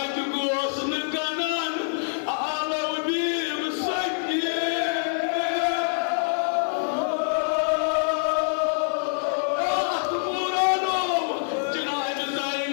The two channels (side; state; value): right; silent; 57 dB below the other